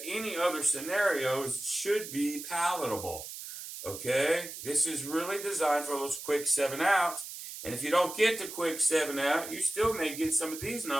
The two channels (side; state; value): right; noise; hiss, 10 dB below the sound